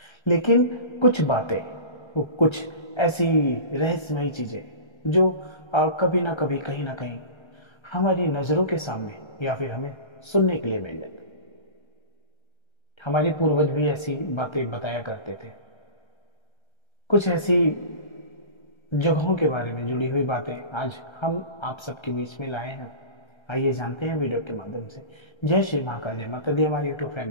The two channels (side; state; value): right; late; 1.3 ms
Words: लेकिन कुछ बातें, वो कुछ ऐसी रहस्यमयी चीजें जो कभी ना कभी कहीं ना कहीं हमारी नजरों के सामने या फिर हमें सुनने के लिए मिल जाती। हमारे पूर्वज भी ऐसी बातें बताया करते थे। कुछ ऐसी जगहों के बारे में जुड़ी हुई बातें आज हम आप सबके बीच में लाए हैं। आइए जानते हैं वीडियो के माध्यम से। जय श्री महाकाल, जय माता दी हमारी यूट्यूब